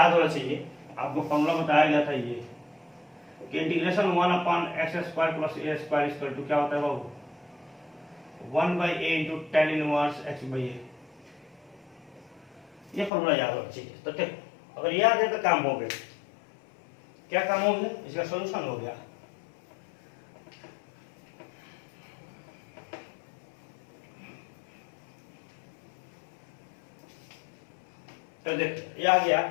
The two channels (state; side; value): drops out; right; at 13.1 s